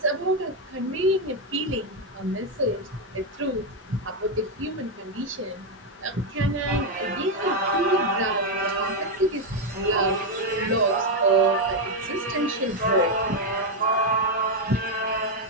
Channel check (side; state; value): both; normal; correlation 0.04